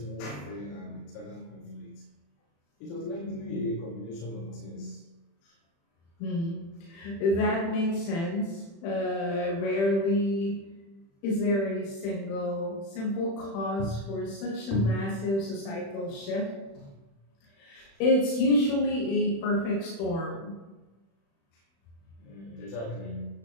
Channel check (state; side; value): late; right; 36 ms